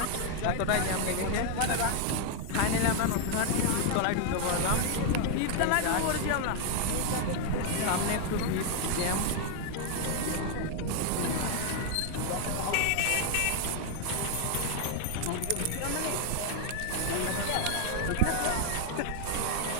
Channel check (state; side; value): different; both; correlation 0.00